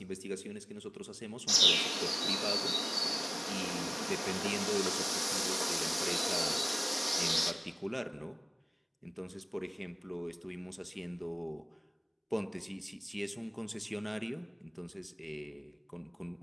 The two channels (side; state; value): both; identical; correlation 1.00